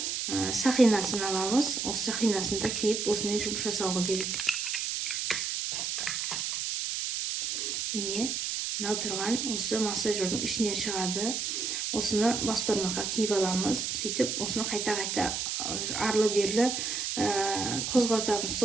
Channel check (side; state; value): right; noise; hiss, 2 dB below the sound